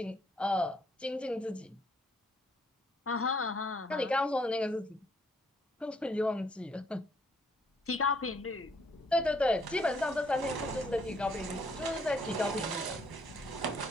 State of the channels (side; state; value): both; normal; correlation 0.67